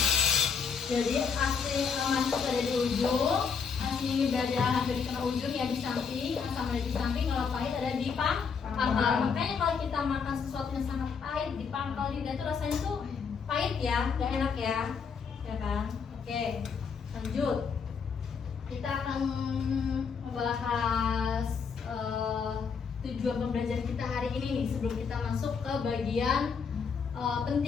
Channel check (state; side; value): quieter; right; 6.0 dB